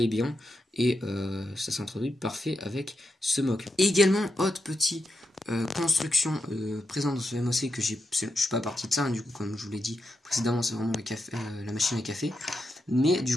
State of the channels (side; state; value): both; normal; correlation 0.86